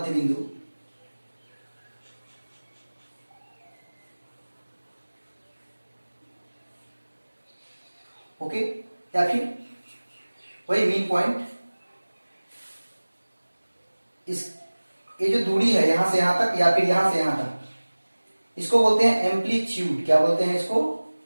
बिंदु। ओके, या फिर वही मीन पॉइंट। इस ये जो दूरी है यहां से यहां तक या फिर यहां से यहां तक, इसको बोलते हैं एम्पलीट्यूड। क्या बोलते हैं इसको?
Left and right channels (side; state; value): both; inverted; correlation -1.00